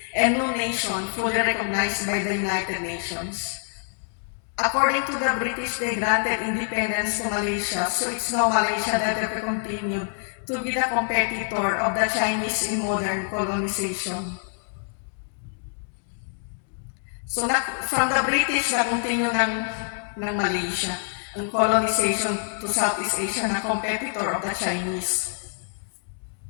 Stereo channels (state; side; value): silent; right; 61 dB below the other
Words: and no nation fully recognized by the United Nations. According to the British, they granted independence to Malaysia, so it's now Malaysia that will continue to be the competitor of the Chinese in modern colonization. So from the British, na-continue ng Malaysia ang colonization to Southeast Asia na competitor of the Chinese.